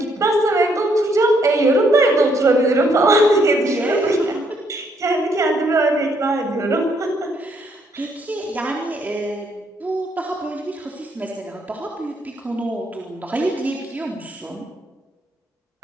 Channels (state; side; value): normal; both; correlation 0.71